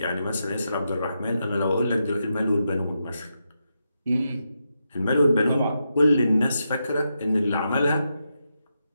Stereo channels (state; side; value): inverted; both; correlation -0.85